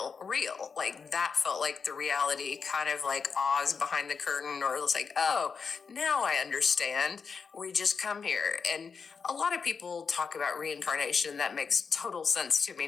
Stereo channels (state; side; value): quieter; right; 5.6 dB